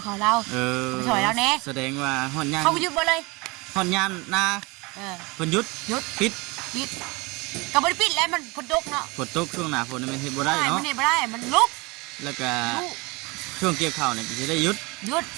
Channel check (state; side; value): quieter; left; 25.7 dB